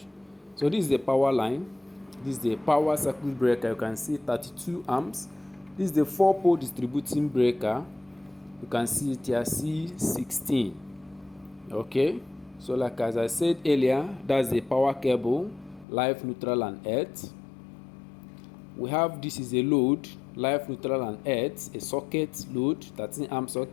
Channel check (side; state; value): right; drops out; at 15.9 s